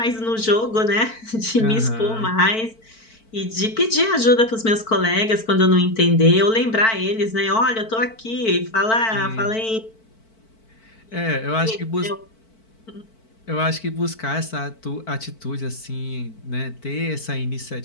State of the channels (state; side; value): late; right; 4.5 ms